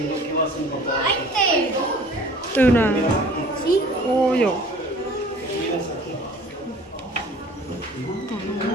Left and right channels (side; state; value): both; normal; correlation 0.48